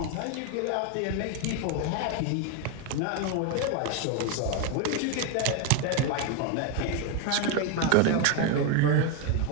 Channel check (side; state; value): both; different; correlation 0.02